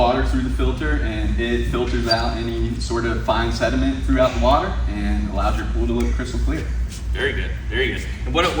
through the filter, and it filters out any sort of fine sediment throughout the water and allows your pool to look crystal clear. Very good, very good. And what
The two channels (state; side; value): identical; both; correlation 1.00